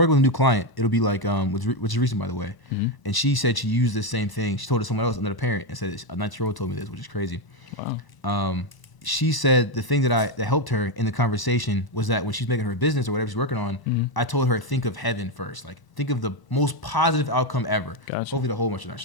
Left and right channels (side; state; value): right; late; 1.0 ms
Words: with a new client, it'll be like, which is recent by the way, and she said she used the same thing. She told it to someone else, another parent, and said a 19-year-old told me this, which is crazy. Wow. She said the thing that helped her in the conversation was that when she's making her business or whatever she's working on, I told her think of heaven first, like think of the most positive outcome ever. Gotcha. Hopefully the whole bunch of that,